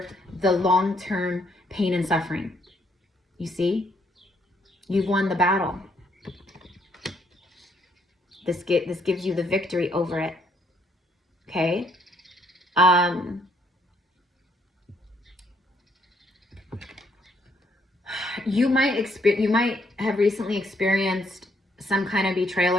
the long-term pain and suffering. You see? You've won the battle. This gives you the victory over it. Okay? You might have recently experienced some kind of betrayal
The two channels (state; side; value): normal; both; correlation 0.70